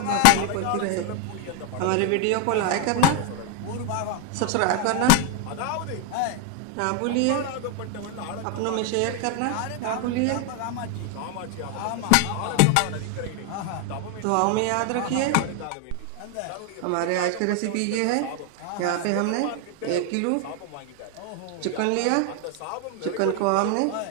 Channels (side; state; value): both; different; correlation 0.01